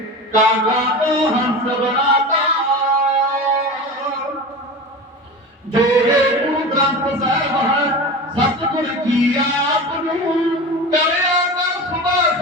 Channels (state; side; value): normal; both; correlation 0.30